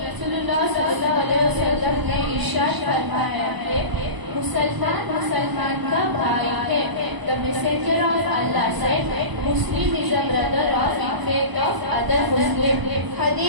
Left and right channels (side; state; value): left; late; 1.0 ms